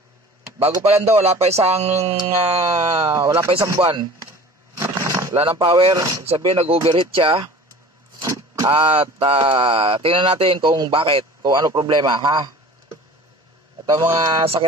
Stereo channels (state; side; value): normal; both; correlation 0.43